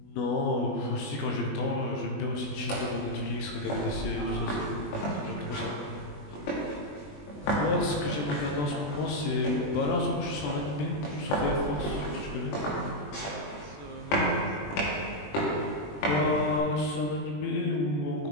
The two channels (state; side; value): late; right; 20 ms